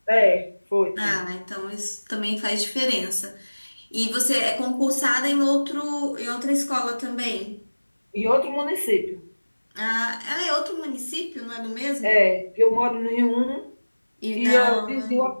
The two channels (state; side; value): inverted; both; correlation -1.00